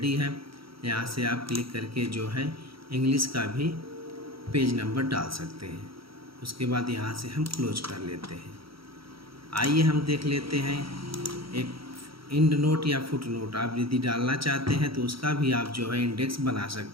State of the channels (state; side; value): late; left; 0.75 ms